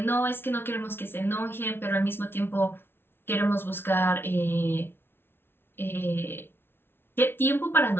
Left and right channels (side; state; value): right; late; 0.11 ms